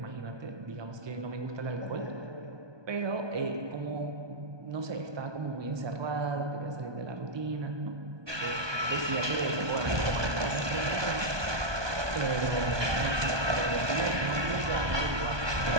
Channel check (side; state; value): left; late; 1.2 ms